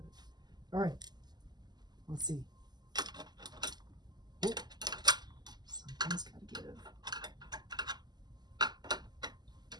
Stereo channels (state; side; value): late; left; 0.20 ms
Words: All right. Let's see. Oh. Something's got to give.